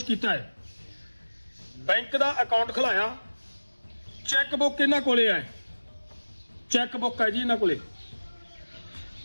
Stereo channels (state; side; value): inverted; both; correlation -1.00